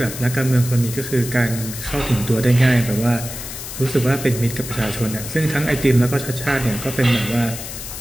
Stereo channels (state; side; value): noise; left; hiss, 9 dB below the sound